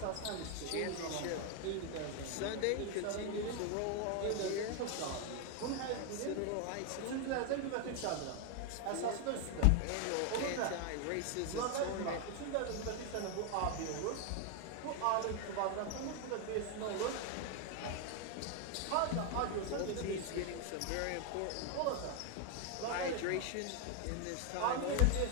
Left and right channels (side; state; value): both; different; correlation 0.01